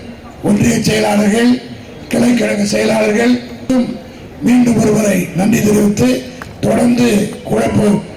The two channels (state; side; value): identical; both; correlation 1.00